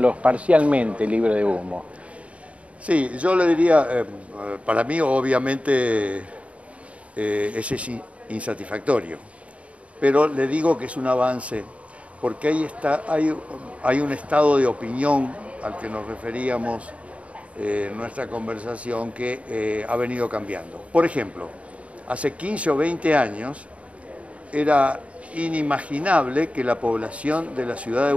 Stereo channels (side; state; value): left; late; 0.065 ms